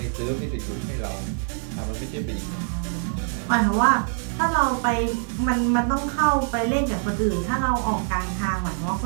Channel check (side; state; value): left; silent; 56 dB below the other